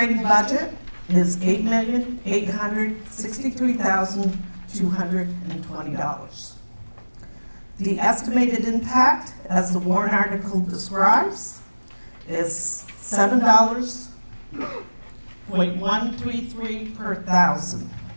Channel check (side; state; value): both; inverted; correlation -1.00